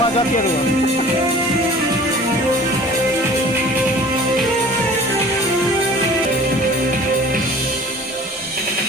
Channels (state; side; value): normal; both; correlation 0.46